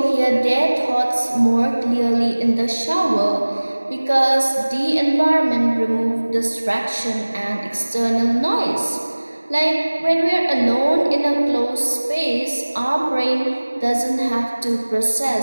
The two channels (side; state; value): both; inverted; correlation -1.00